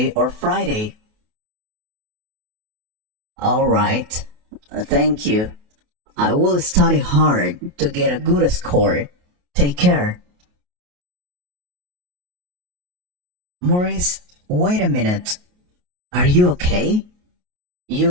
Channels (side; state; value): left; late; 28 ms